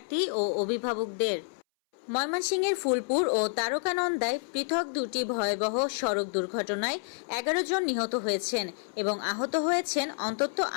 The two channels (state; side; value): silent; right; 59 dB below the other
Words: ও অভিভাবকদের। ময়মনসিংহের ফুলপুর ও তারকানন্দায় পৃথক দুটি ভয়াবহ সড়ক দুর্ঘটনায় 11 জন নিহত হয়েছেন এবং আহত হয়েছেন অন্তত